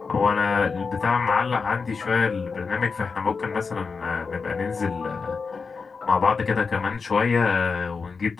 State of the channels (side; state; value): right; quieter; 4.9 dB